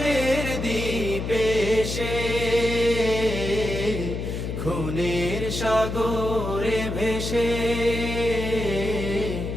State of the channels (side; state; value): left; noise; hum, 4 dB below the sound